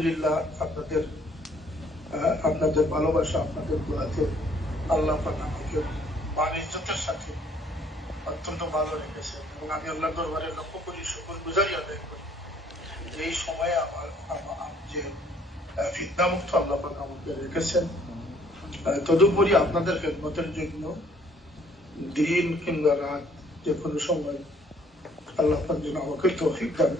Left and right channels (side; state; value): both; normal; correlation 0.61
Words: আপনাদের ভালোবাসা, আপনাদের দোয়াতে আল্লাহ পাক আমাকে মান ইজ্জতের সাথে অত্যন্ত ভালো রেখেছে, এবং আমি আল্লাহর দরবারে লক্ষ্য করি, শুকরগুজারি আদায় করি যে এই সময়ে আমার যে ফিতনামুক্ত আল্লাহ পাক আমাকে রেখেছেন। তদুপরি আপনাদের খেদমতের জন্য দিন কিংবা রাত যে কোনো সময় আল্লাহ পাক যেন আমাকে তৌফিক দান